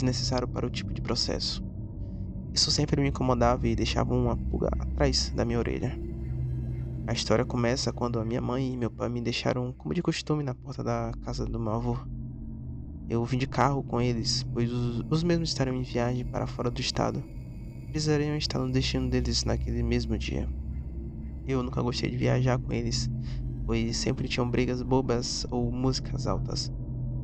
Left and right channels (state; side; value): identical; both; correlation 1.00